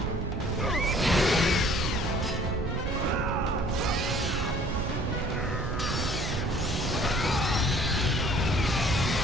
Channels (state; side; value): noise; right; rumble, 3 dB below the sound